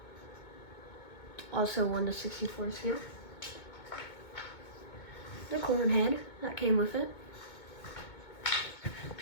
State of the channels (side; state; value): right; late; 2.2 ms